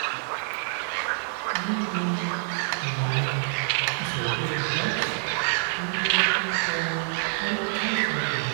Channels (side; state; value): left; silent; digital silence